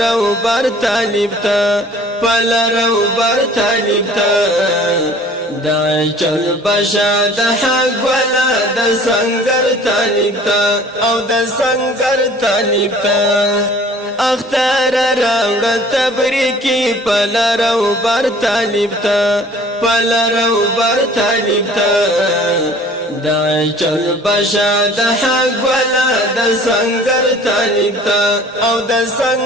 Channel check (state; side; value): normal; both; correlation 0.50